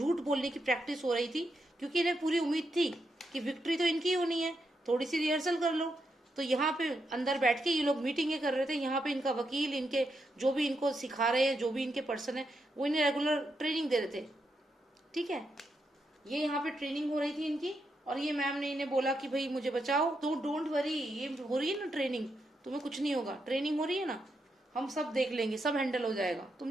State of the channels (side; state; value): both; normal; correlation 0.83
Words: बोलने की प्रैक्टिस हो रही थी, क्योंकि इन्हें पूरी उम्मीद थी कि विक्ट्री तो इनकी होनी है, थोड़ी सी रिहर्सल कर लो। तो यहाँ पे अंदर बैठ के ये लोग मीटिंगें कर रहे थे, यहाँ पे इनका वकील, इनके जो भी इनको सिखा रहे हैं, जो भी इनके पर्सन है, वो इन्हें रेगुलर ट्रेनिंग दे रहे थे, ठीक है। ये यहाँ पे ट्रेनिंग हो रही थी इनकी, और ये मैम ने इन्हें बोला कि भाई मुझे बचाओ, तो डोंट वरी, ये हो रही है ना ट्रेनिंग, तुम्हें कुछ नहीं होगा, ट्रेनिंग हो रही है ना, हम सब देख लेंगे, सब हैंडल हो जाएगा,